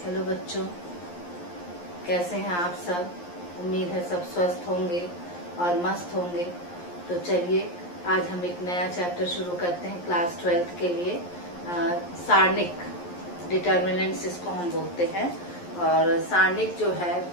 हेलो बच्चों, कैसे हैं आप सब। उम्मीद है सब स्वस्थ होंगे और मस्त होंगे। तो चलिए आज हम एक नया चैप्टर शुरू करते हैं क्लास 12th के लिए। सारणिक डिटर्मिनेंट्स इसको हम बोलते हैं। और सारणिक जो है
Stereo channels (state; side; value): late; right; 11 ms